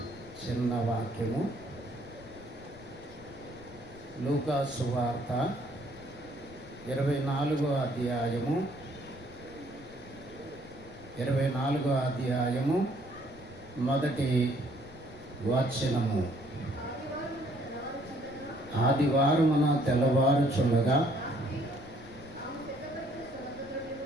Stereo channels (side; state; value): left; noise; rumble, 20 dB below the sound